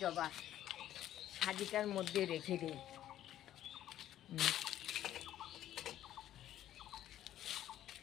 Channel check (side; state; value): right; quieter; 12.3 dB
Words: জবা, সাজিটার মধ্যে রেখে দিই।